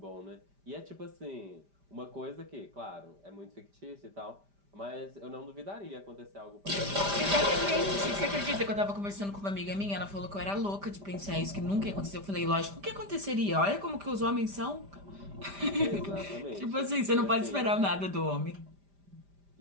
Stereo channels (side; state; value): left; late; 5.0 ms